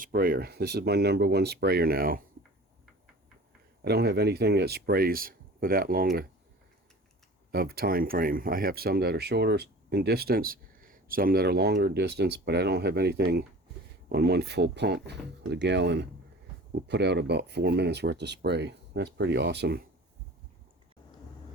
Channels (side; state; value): both; normal; correlation 0.41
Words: This is my #1 sprayer now. I don't have anything that sprays for that long of time frame. I have some that are shorter in distance, some that are longer distance, but I don't have anything on one full pump with a gallon will put out about 4 minutes worth of spray. That's pretty awesome.